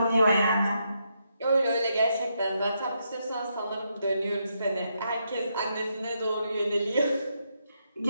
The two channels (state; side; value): inverted; both; correlation -0.80